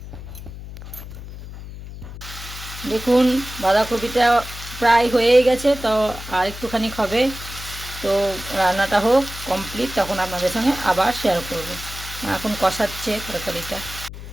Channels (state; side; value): noise; left; hum, 12 dB below the sound